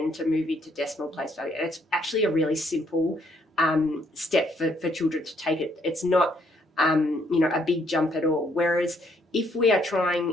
to move into decimal place value. And it's actually a really simple step for children to take it. It's not a big jump at all. Whereas if we are trying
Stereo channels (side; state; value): both; normal; correlation 0.69